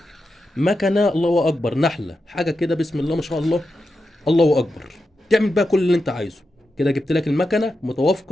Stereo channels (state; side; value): normal; both; correlation 0.89